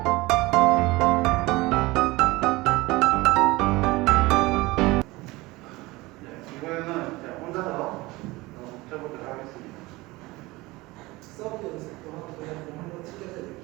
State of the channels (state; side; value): quieter; left; 21.2 dB